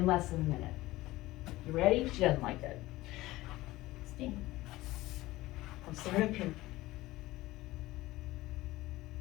less than a minute. You ready? She doesn't like it. Stand. I'll stand up here.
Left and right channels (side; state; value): right; quieter; 18.1 dB